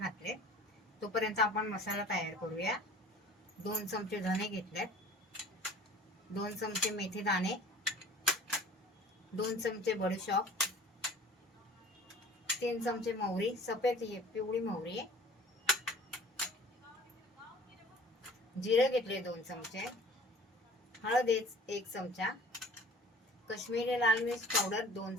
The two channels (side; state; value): both; normal; correlation 0.47